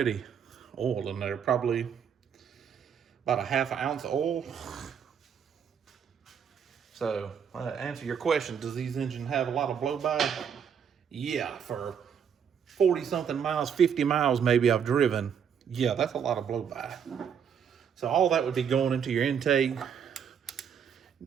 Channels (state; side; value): quieter; left; 7.6 dB